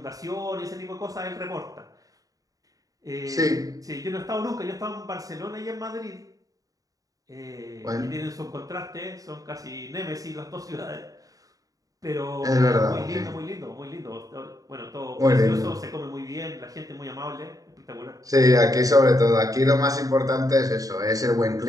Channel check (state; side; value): late; left; 0.17 ms